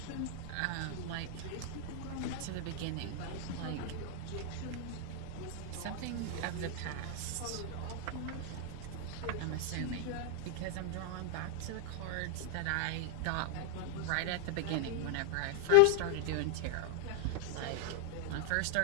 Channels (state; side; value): different; both; correlation 0.00